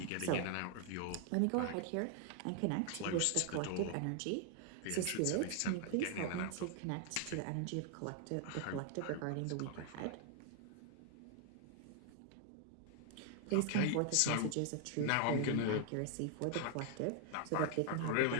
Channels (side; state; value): both; different; correlation 0.00